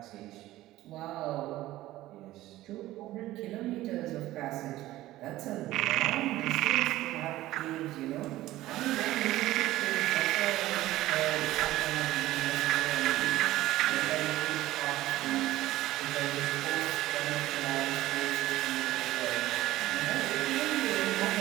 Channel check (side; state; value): left; quieter; 15.9 dB